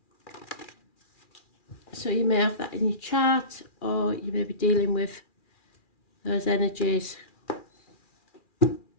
So you may have that in your chart, or you may be dealing with those energies.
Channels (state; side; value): late; right; 2.4 ms